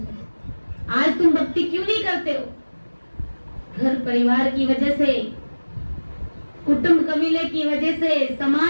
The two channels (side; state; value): both; inverted; correlation -1.00